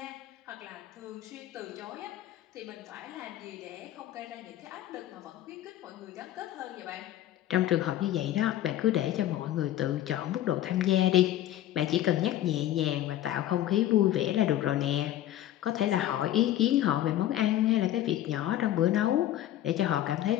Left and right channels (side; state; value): right; quieter; 13.0 dB